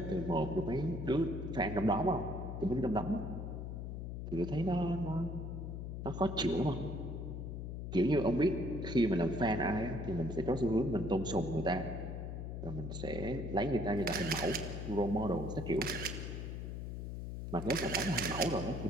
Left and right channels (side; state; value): left; noise; hum, 6 dB below the sound